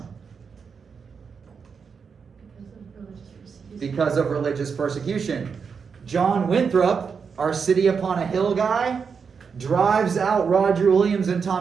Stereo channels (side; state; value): left; quieter; 6.0 dB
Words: Because of religious persecution. John Winthrop, our city upon a hill guy, drives out Roger Williams and